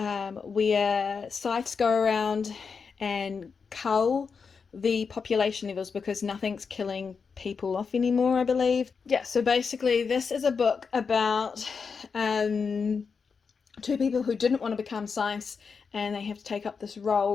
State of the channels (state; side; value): quieter; right; 5.5 dB